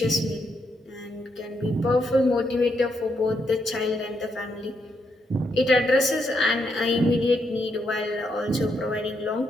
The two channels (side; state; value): both; normal; correlation 0.79